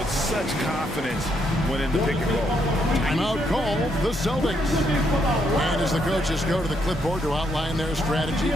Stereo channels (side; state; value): both; normal; correlation 0.75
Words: such confidence when in the pick and roll. Timeout called the Celtics. And as the coaches go to the clipboard to outline their strategy